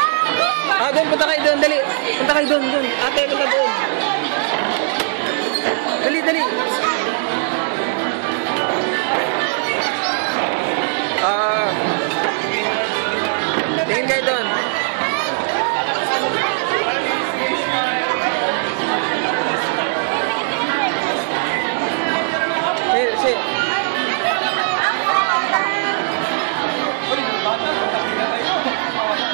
Ah, doon, punta kayo doon, dali! Punta kayo doon, doon! Ate, punta doon! Dali, dali! Tingin kayo doon. Si.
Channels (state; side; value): silent; left; digital silence